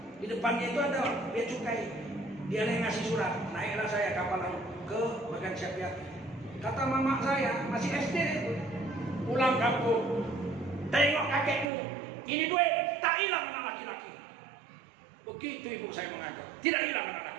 Di depannya itu ada bea cukai. Dia yang ngasih surat. Naiklah saya kapal laut ke Bagan Siapiat. Kata mama saya, masih SD itu, pulang kampung, tengok kakekmu, ini duit, tak hilang anak laki-laki. Begitu ibu saya mengajar, tidak hilang anak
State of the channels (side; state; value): left; drops out; at 11.7 s